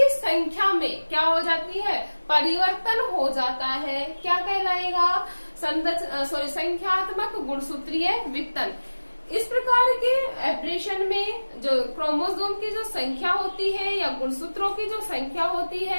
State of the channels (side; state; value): both; inverted; correlation -1.00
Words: संख्या में क्या हो जाती है? परिवर्तन हो जाता है। क्या कहलाएगा? संख्यात्मक गुणसूत्रीय विघटन। इस प्रकार के एब्रेशन में जो क्रोमोसोम की जो संख्या होती है या गुणसूत्रों की जो संख्या होती